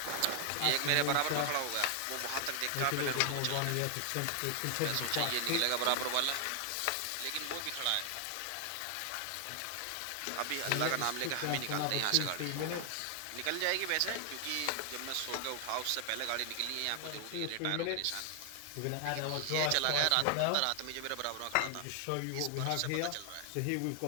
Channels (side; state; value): both; different; correlation 0.00